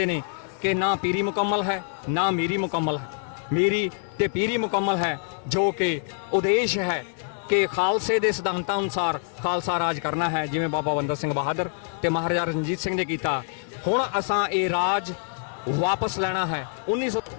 ਨੇ ਕਿ ਨਾ ਪੀਰੀ ਮੁਕੰਮਲ ਹੈ, ਨਾ ਮੀਰੀ ਮੁਕੰਮਲ ਹੈ। ਮੀਰੀ ਤੇ ਪੀਰੀ ਮੁਕੰਮਲ ਹੈ, ਜੋ ਕਿ ਉਦੇਸ਼ ਹੈ ਕਿ ਖਾਲਸੇ ਦੇ ਸਿਧਾਂਤਾਂ ਅਨੁਸਾਰ ਖਾਲਸਾ ਰਾਜ ਕਰਨਾ ਹੈ, ਜਿਵੇਂ ਬਾਬਾ ਬੰਦਾ ਸਿੰਘ ਬਹਾਦਰ ਤੇ ਮਹਾਰਾਜਾ ਰਣਜੀਤ ਸਿੰਘ ਨੇ ਕੀਤਾ। ਹੁਣ ਅਸਾਂ ਇਹ ਰਾਜ ਵਾਪਸ ਲੈਣਾ ਹੈ। 1900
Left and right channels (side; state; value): right; silent; 61 dB below the other